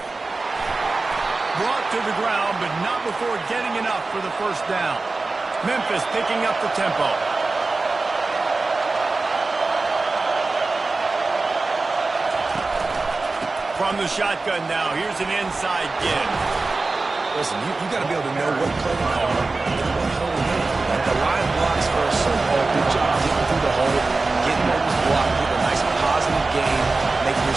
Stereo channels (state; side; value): quieter; left; 3.6 dB